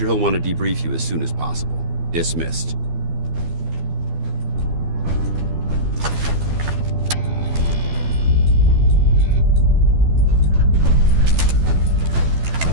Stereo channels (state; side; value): late; left; 12 ms